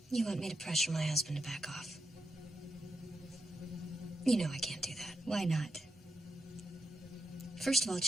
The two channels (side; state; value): both; normal; correlation 0.84